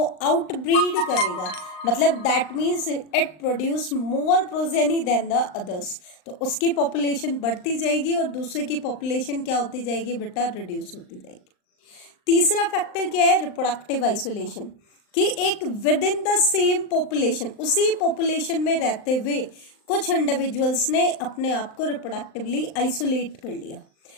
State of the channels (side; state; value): right; late; 39 ms